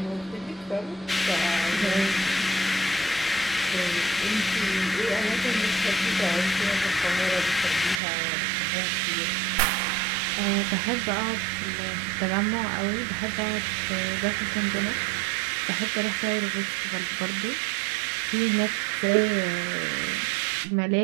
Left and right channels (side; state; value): left; drops out; at 8.0 s